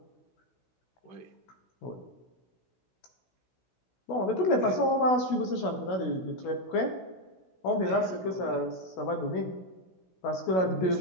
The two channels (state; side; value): late; right; 16 ms